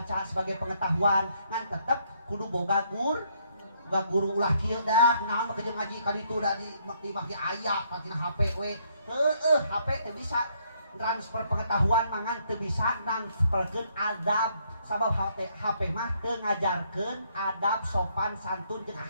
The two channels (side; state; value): both; inverted; correlation -0.70